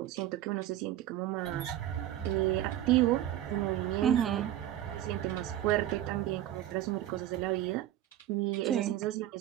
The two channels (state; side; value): quieter; left; 12.8 dB